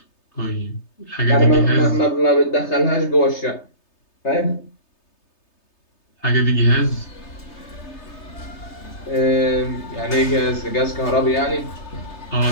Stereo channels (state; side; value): late; right; 3.3 ms